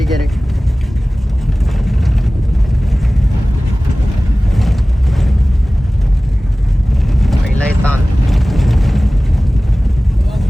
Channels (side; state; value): both; normal; correlation 0.98